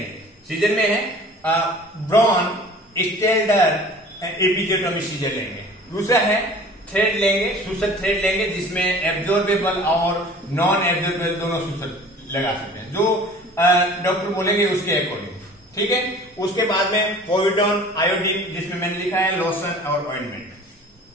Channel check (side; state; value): both; normal; correlation 0.45